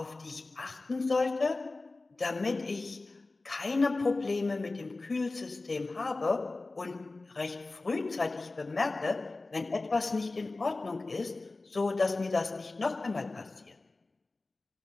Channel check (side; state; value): right; quieter; 3.3 dB